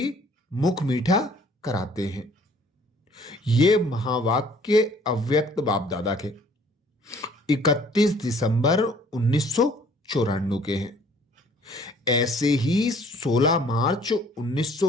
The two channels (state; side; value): normal; both; correlation 0.57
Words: मुख मीठा कराते हैं। ये महावाक्य अव्यक्त बाप दादा के 31 दिसंबर 1994 के हैं। ऐसे ही 16 मार्च